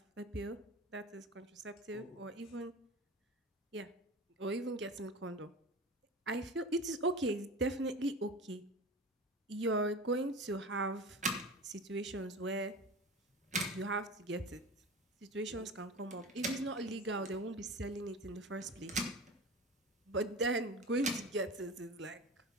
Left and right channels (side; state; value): both; normal; correlation 0.32